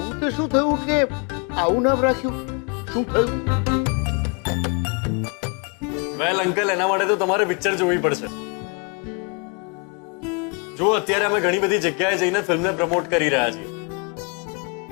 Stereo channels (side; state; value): right; quieter; 34.2 dB